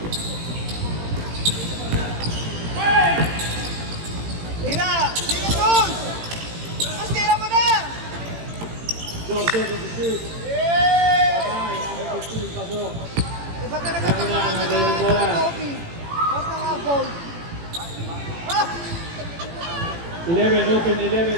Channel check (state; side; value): late; left; 18 ms